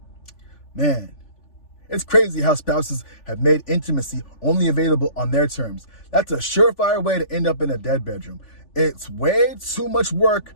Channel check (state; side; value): late; right; 3.4 ms